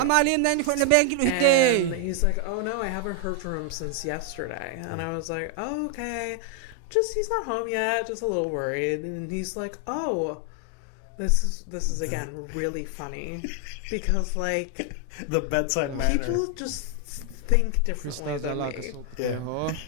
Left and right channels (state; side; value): different; both; correlation 0.00